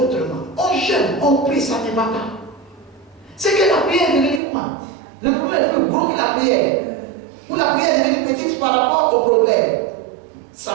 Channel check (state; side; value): drops out; left; at 4.4 s